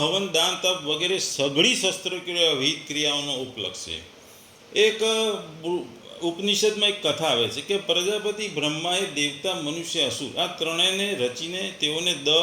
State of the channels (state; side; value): identical; both; correlation 1.00